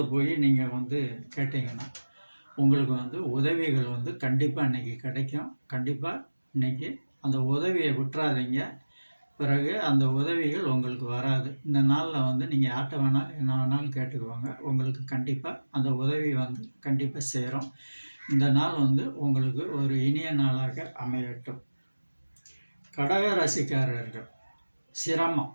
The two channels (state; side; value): inverted; both; correlation -1.00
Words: போய் நீங்கள் கேட்டிங்கன்னா உங்களுக்கு உதவிகள் கண்டிப்பாக இன்றைக்கி கிடைக்கும். கண்டிப்பாக இன்றைக்கி அந்த உதவியை விட்டுறாதீங்க. பிறகு அந்த உதவிகள் உங்களுக்கு வராது. இந்த நாளில் நீங்கள் யார்கிட்ட வேணாலும் என்ன வேணாலும் கேட்டுக்குவாங்க. உங்களுக்கு கண்டிப்பாக அந்த உதவி கண்டிப்பாக சேரும். இந்த நாள் உங்களுக்கு ஒரு இனிய நாளாக அமையட்டும். கடக ராசிக்காரர்கள் சிரமம்.